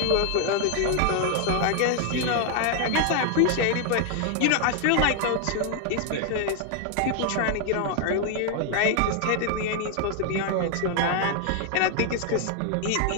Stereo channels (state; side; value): different; both; correlation 0.00